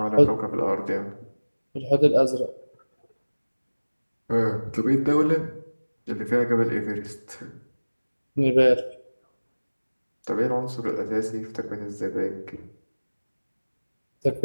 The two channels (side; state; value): both; inverted; correlation -1.00